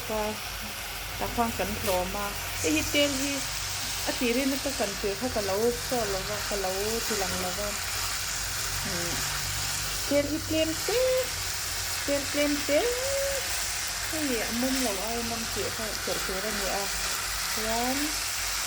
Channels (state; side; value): identical; both; correlation 1.00